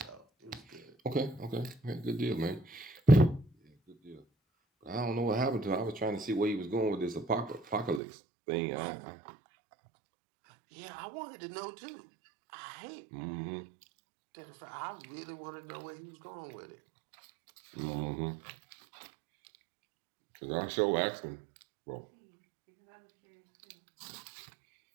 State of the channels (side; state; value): left; drops out; at 8.0 s